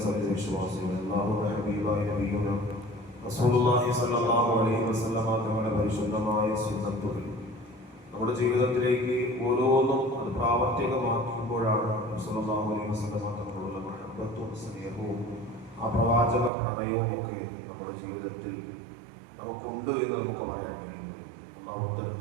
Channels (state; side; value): drops out; left; at 16.5 s